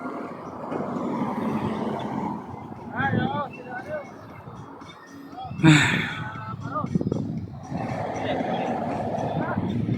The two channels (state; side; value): identical; both; correlation 1.00